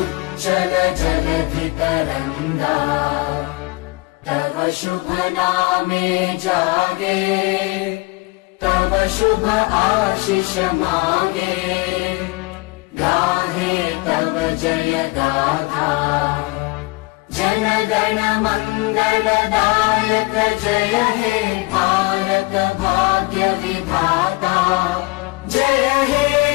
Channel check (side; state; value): right; quieter; 24.4 dB